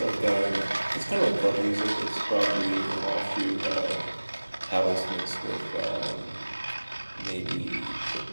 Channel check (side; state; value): both; inverted; correlation -1.00